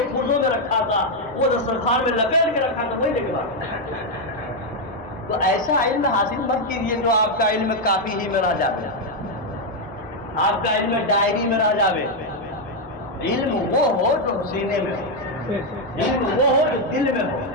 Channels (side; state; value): both; normal; correlation 0.02